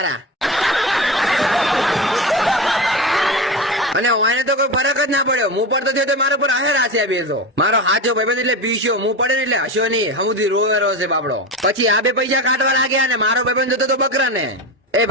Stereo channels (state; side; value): normal; both; correlation 0.23